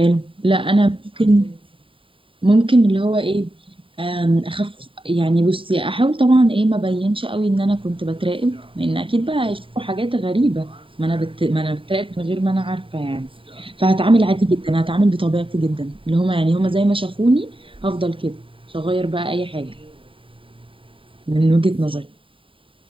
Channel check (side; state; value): left; late; 0.25 ms